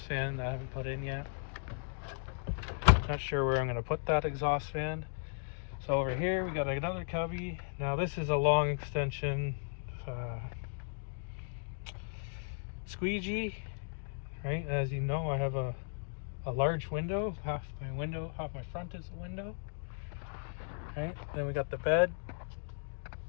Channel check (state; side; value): silent; right; digital silence